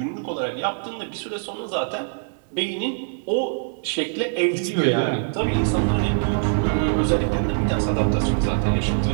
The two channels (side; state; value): left; silent; 63 dB below the other